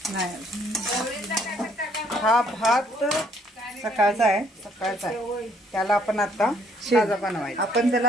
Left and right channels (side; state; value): both; normal; correlation 0.65